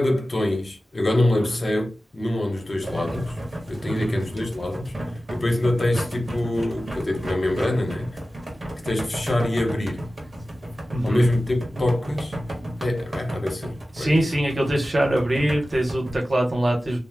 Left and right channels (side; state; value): both; normal; correlation 0.95